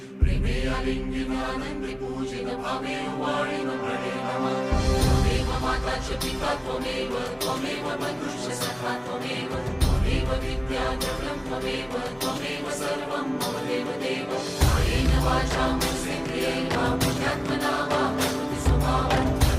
प्रेमे आलिंगिनानंदी पूजित भावे वाळीन प्रणय नमः त्वमेव माता च पिता त्वमेव बन्धुश्च सखा त्वमेव विद्या द्रव्यं त्वमेव सर्वं मम देव कायेन वाचा मनसेन्द्रियैर्वा बुद्ध्यात्मना वा प्रकृतिस्वभावं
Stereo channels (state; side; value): identical; both; correlation 1.00